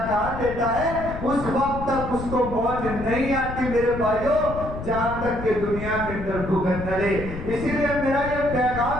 کہاں دیتا ہے؟ اس وقت تک اس کو موت نہیں آتی میرے بھائیوں جہاں تک کہ دنیا کے اندر بھگت نہ رہے. اسی لیے میرا یہ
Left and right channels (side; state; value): left; noise; rumble, 8 dB below the sound